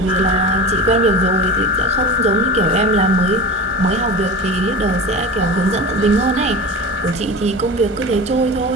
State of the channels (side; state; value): both; normal; correlation 0.30